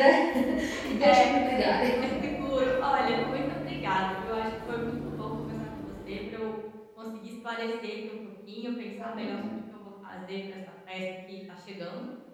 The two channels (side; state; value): both; identical; correlation 1.00